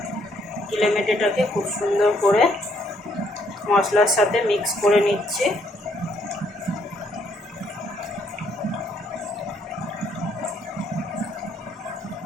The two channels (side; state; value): both; normal; correlation 0.70